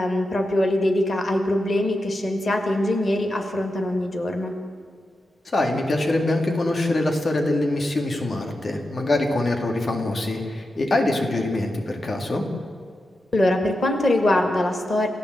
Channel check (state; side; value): normal; both; correlation 0.89